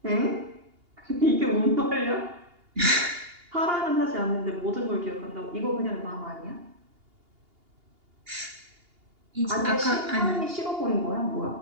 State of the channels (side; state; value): left; late; 2.8 ms